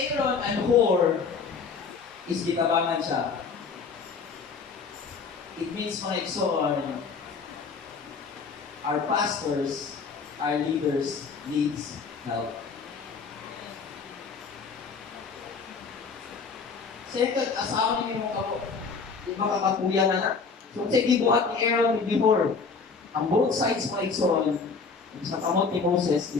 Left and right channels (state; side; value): quieter; right; 5.0 dB